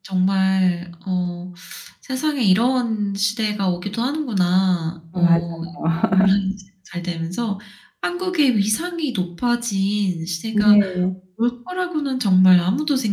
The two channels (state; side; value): identical; both; correlation 1.00